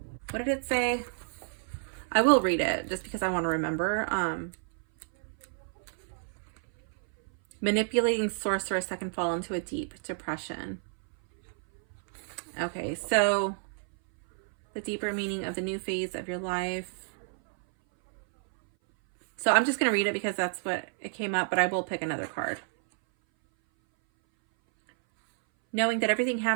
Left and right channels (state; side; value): silent; left; 58 dB below the other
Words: What did it say? I will read it just because I want to remember. Manipulating sorceress that can fall into a deep depression. Okay, so the deeper meaning of the new phase of your life. So I'm just going to read it because that's what it came up, but I will pick another card. Knowing that everything